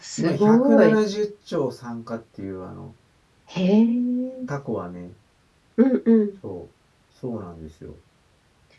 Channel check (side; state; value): both; identical; correlation 1.00